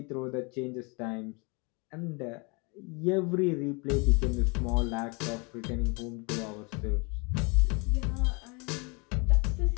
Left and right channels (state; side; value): quieter; right; 30.5 dB